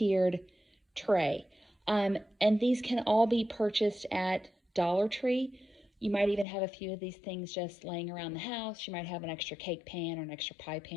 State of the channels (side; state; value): right; drops out; at 6.5 s